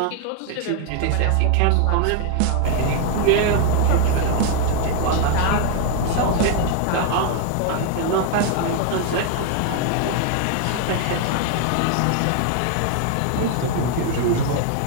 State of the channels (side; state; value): both; different; correlation 0.00